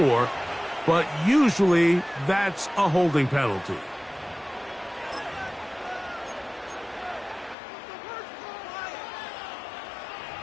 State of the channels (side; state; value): right; drops out; at 7.6 s